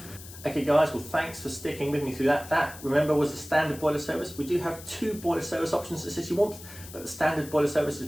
Okay guys, well thanks for sticking with me through that. That, remember, was the standard boiler service. We do have 2 boiler service options at City Warmth, but the standard boiler service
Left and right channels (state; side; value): noise; left; hiss, 16 dB below the sound